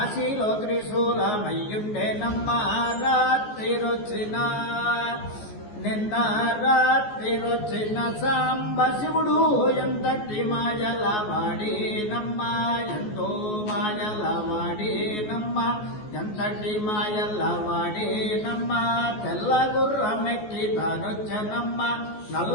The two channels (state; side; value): late; right; 14 ms